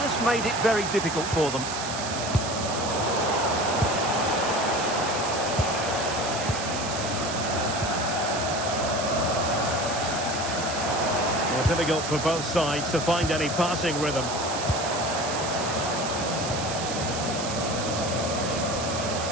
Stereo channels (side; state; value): right; noise; hiss, 6 dB below the sound